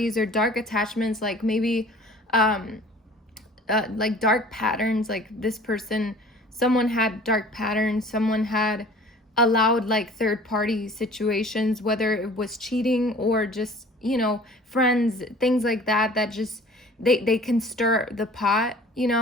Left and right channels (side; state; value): both; normal; correlation 0.48